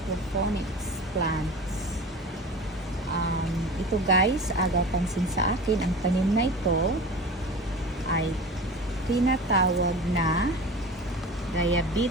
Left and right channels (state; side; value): normal; both; correlation 0.35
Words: plants. Ito guys, agaw pansin sa akin, ang tanim na ito ay tinatawag na